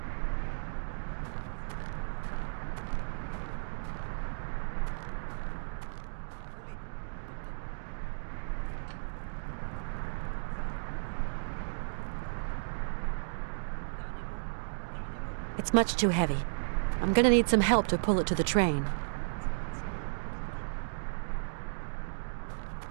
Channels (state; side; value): silent; left; digital silence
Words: It's much too heavy. I'm gonna need some help to pull it to the train.